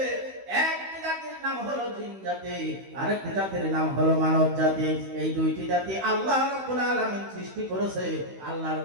একটি জাতির নাম হলো জিন জাতি, আরেকটি জাতির নাম হলো মানব জাতি। এই দুইটি জাতি আল্লাহ রাব্বুল আলামিন সৃষ্টি করেছে আল্লাহর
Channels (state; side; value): late; left; 16 ms